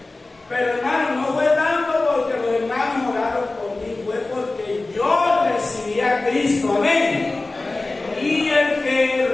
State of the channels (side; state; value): right; quieter; 3.2 dB